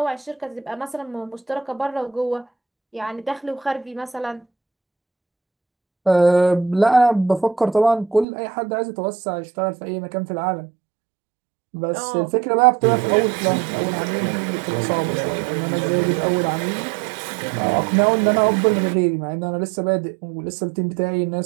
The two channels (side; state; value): left; drops out; at 8.2 s